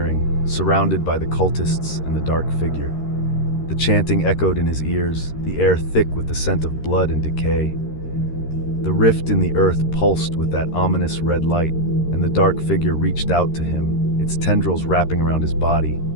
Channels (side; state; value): right; late; 13 ms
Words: surrounded by the cultists and the dark figure. The chanting echoed in his ears, the air thick with the scent of blood and decay. The rift in the earth pulsed with that ominous red light, and the dark figure reached out to him, its tendrils wrapping around his body,